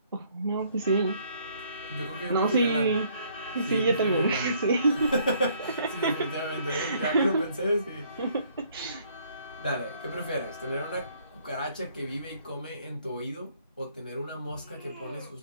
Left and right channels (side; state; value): both; inverted; correlation -0.64